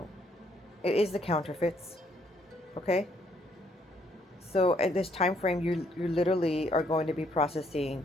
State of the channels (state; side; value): normal; both; correlation 0.69